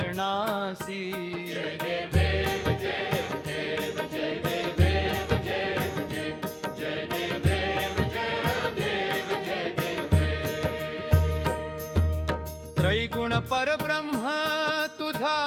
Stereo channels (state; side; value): identical; both; correlation 1.00